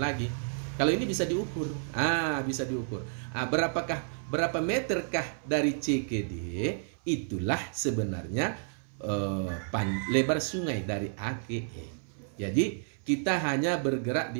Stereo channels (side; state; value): left; silent; 57 dB below the other